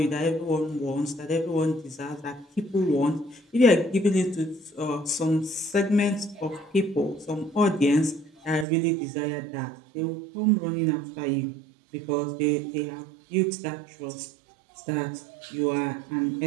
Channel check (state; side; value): drops out; left; at 8.7 s